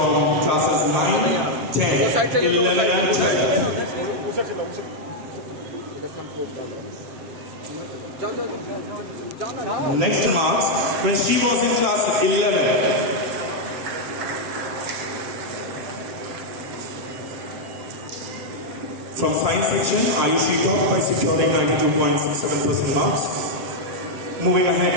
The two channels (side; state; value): left; late; 7.7 ms